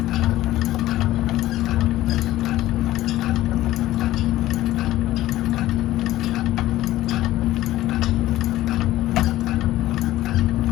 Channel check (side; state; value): right; quieter; 15.3 dB